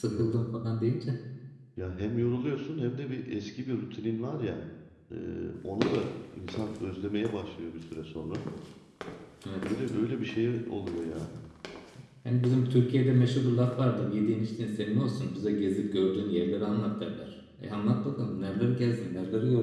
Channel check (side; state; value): both; identical; correlation 1.00